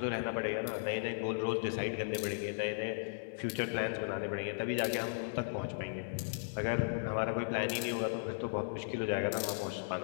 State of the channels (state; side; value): silent; right; digital silence